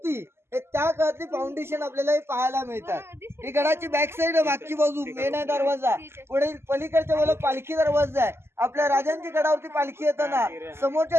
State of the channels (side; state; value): left; late; 0.12 ms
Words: हे त्या काळातली फाउंडेशन आपल्याला पाहायला मिळतात. ही गडाची बॅक साइड, मागची बाजू मेन आहे दरवाजा. पुढे पलीकडच्या बाजूला पालखी दरवाजा आहे. आपल्या राजांची गडावरती पालखी येताना समोरच्या